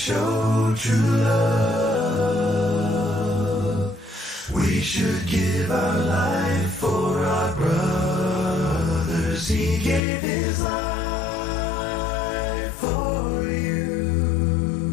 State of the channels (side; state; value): right; drops out; at 10.0 s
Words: true love. We should give our life for our brothers. He gave his life for